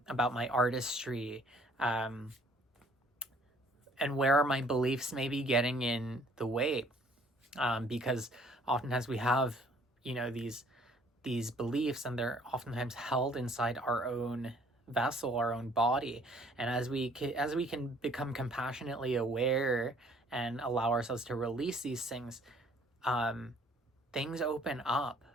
my artistry? And where are my beliefs maybe getting in the way? Because oftentimes we have, you know, these beliefs, and they're oftentimes held inside our own vessel, our own body. And as we can become compassionately aware and allow ourselves to release these things, things open up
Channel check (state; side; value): normal; both; correlation 0.59